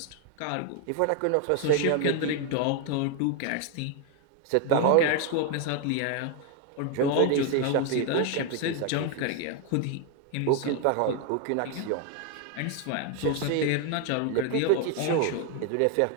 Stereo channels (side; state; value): both; different; correlation 0.01